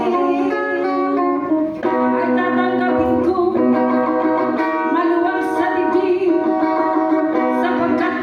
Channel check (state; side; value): identical; both; correlation 1.00